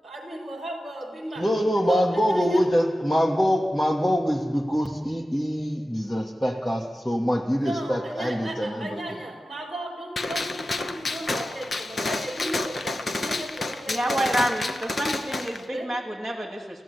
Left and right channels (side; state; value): both; normal; correlation 0.93